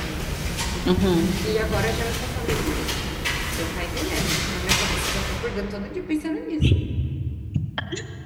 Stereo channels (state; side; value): identical; both; correlation 1.00